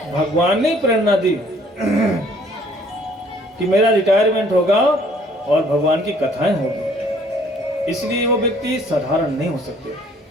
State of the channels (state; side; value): normal; both; correlation 0.59